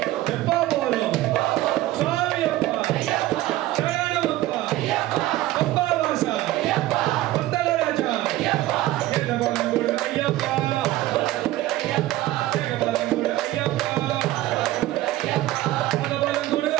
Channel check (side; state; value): left; quieter; 15.8 dB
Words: எப்போ போறோம் சுவாமி அப்பா சரணம் அப்பா அப்பா வாசா பந்தல ராஜா ஏதபலங்குடு ஐயப்பா ஏதபலங்குடு ஐயப்பா பதபலங்குடு